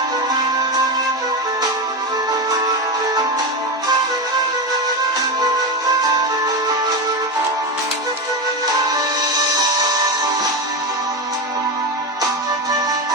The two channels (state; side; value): normal; both; correlation 0.16